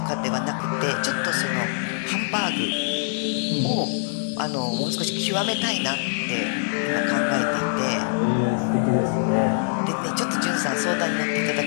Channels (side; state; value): right; silent; digital silence